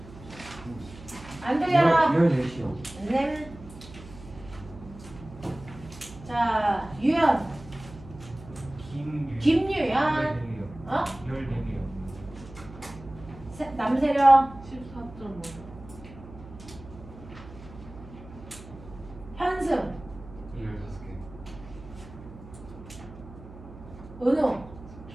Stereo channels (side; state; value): right; noise; hum, 17 dB below the sound